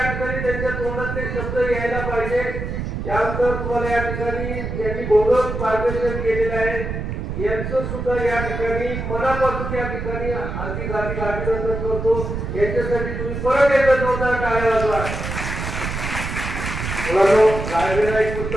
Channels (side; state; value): right; noise; rumble, 5 dB below the sound